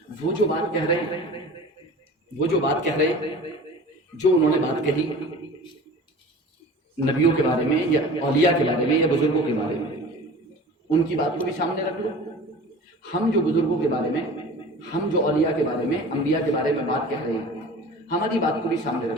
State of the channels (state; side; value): normal; both; correlation 0.40